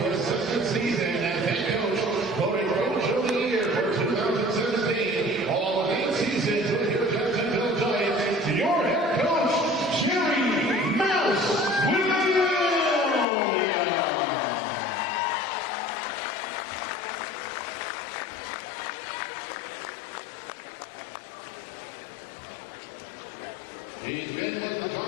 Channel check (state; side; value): drops out; right; at 13.2 s